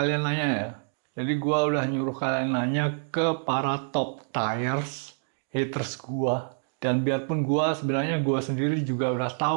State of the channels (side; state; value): left; silent; digital silence